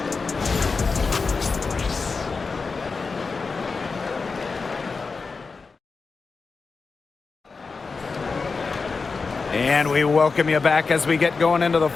And we welcome you back as we get going into the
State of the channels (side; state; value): right; quieter; 4.5 dB